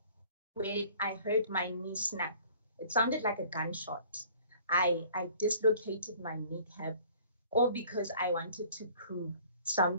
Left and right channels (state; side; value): inverted; both; correlation -0.52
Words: where I heard my knee snap. It sounded like a gunshot. I dislocated my kneecap, all because I wanted to prove